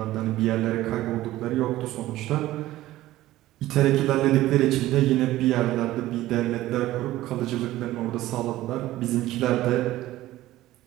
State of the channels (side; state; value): left; quieter; 15.7 dB